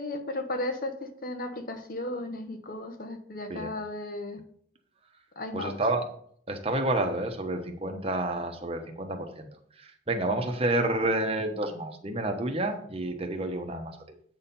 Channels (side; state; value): both; normal; correlation 0.17